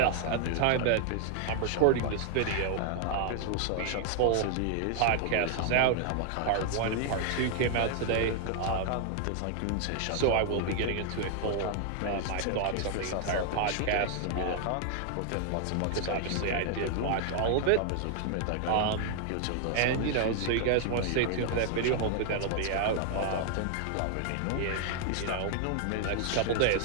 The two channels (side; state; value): both; different; correlation 0.00